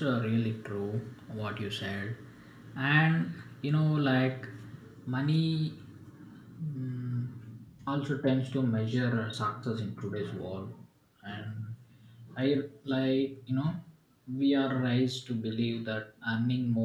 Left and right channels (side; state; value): both; identical; correlation 1.00